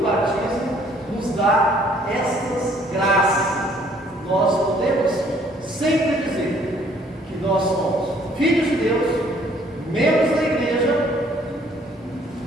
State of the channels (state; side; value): normal; both; correlation 0.61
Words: batismo nos dá essas graças. Nós podemos sempre dizer que nós somos filhos de Deus, membros da igreja